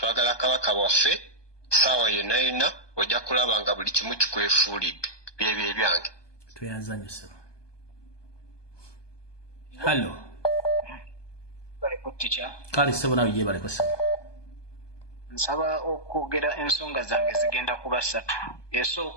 kabaka waffe saawa yonna ojja kulaba nga buli kimu kikwefuulidde byebyo ebyange tuyazanyise hallo kale sebo nawe ye baleko sebo nsaba okwogera ensonga zange zigenda kuba 3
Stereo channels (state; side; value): late; right; 1.2 ms